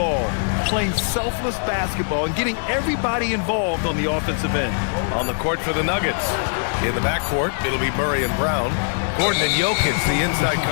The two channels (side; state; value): right; silent; digital silence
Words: playing selfless basketball, and getting everybody involved on the offensive end. On the court for the Nuggets. In the backcourt, it'll be Murray and Brown. Gordon and Jokic, the inside